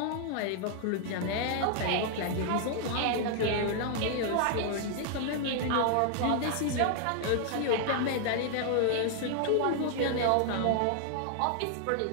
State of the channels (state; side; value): different; both; correlation 0.00